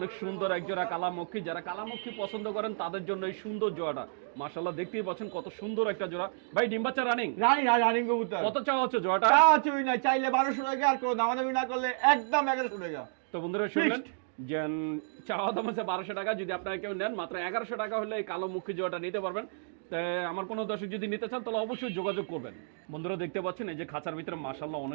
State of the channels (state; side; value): silent; left; digital silence